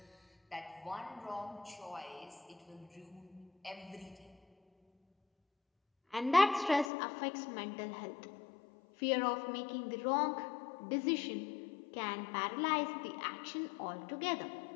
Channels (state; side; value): drops out; right; at 6.9 s